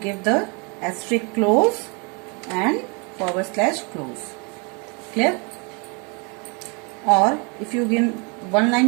the asterisk close and / close. Clear? Or if you give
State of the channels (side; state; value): left; quieter; 32.7 dB